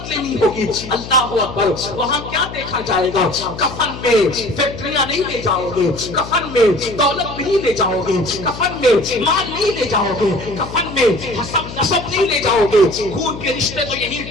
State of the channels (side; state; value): left; noise; hum, 11 dB below the sound